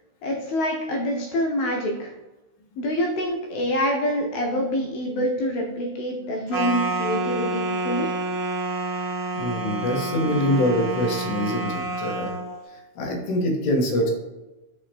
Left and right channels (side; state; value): right; late; 16 ms